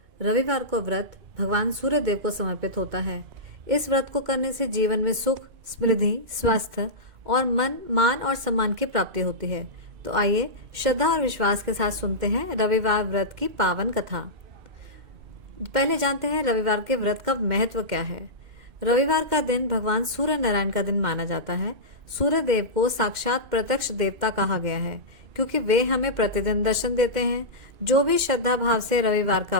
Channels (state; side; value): late; left; 2.1 ms